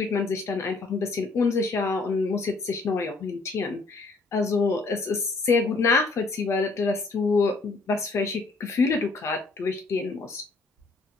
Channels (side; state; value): right; quieter; 3.8 dB